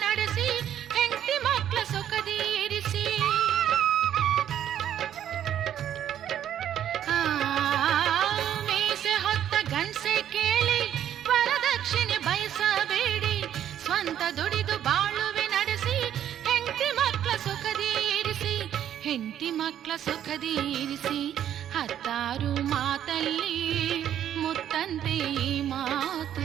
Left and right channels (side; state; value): left; quieter; 10.5 dB